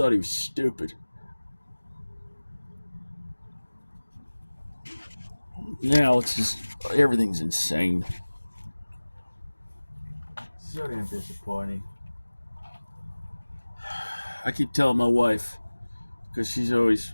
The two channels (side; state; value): both; inverted; correlation -1.00